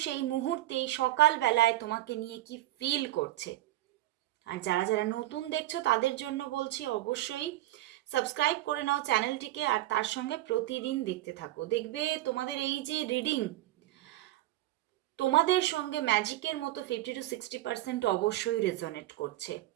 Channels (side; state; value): left; quieter; 15.7 dB